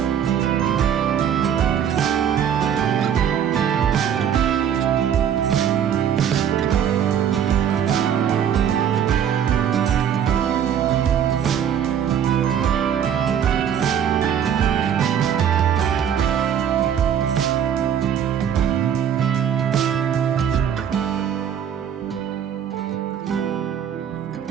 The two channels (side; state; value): left; quieter; 8.9 dB